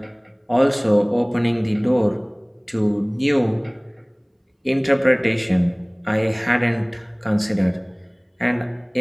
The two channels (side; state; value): both; identical; correlation 1.00